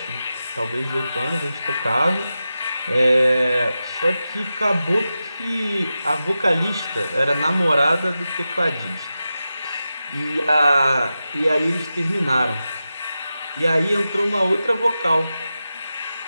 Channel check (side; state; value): both; inverted; correlation -0.92